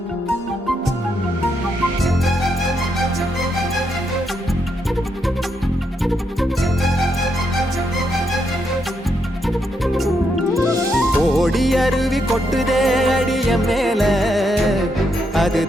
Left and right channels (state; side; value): normal; both; correlation 0.79